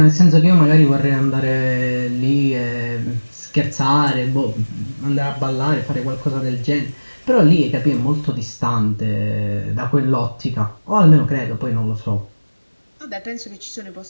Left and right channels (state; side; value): inverted; both; correlation -1.00